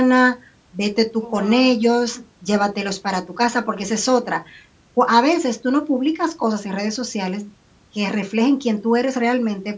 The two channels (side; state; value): both; identical; correlation 1.00